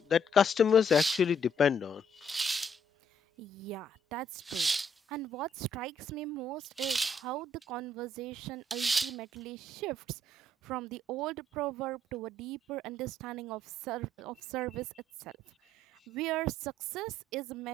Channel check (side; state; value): both; normal; correlation 0.68